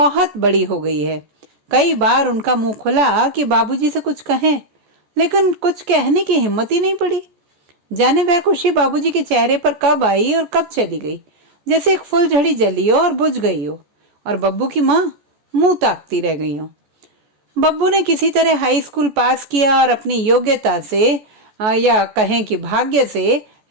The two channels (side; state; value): left; late; 14 ms